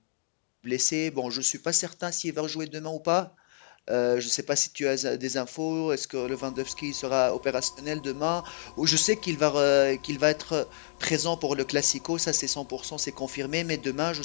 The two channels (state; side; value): silent; right; digital silence